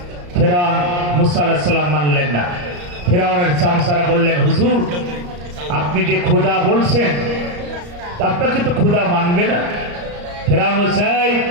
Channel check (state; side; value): late; left; 34 ms